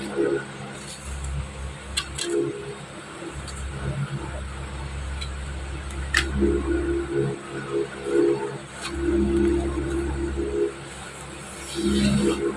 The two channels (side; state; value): both; identical; correlation 1.00